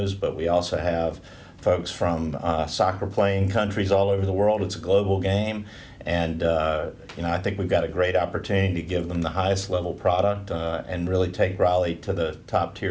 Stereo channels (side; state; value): both; identical; correlation 1.00